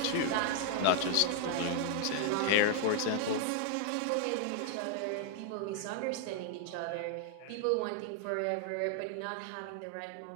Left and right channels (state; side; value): different; both; correlation 0.00